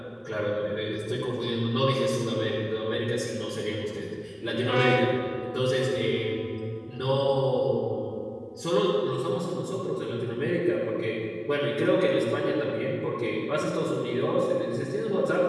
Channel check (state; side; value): identical; both; correlation 1.00